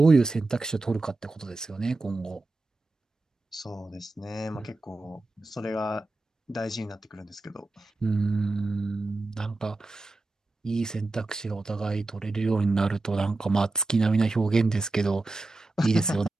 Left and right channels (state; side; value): quieter; left; 3.1 dB